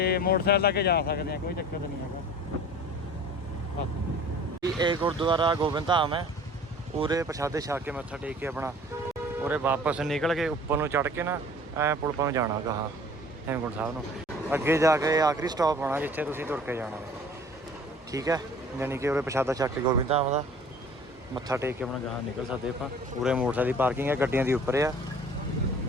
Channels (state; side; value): normal; both; correlation 0.47